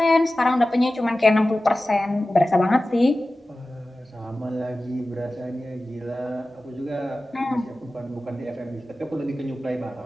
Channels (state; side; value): normal; both; correlation 0.95